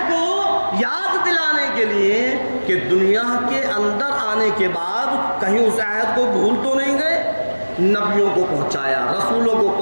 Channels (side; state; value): both; inverted; correlation -1.00